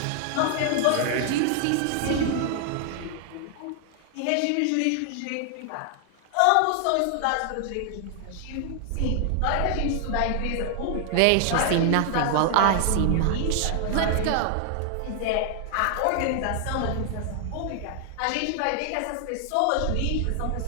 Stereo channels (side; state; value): both; different; correlation 0.00